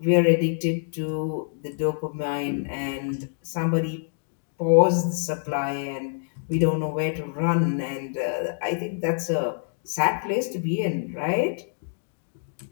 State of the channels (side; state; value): right; silent; digital silence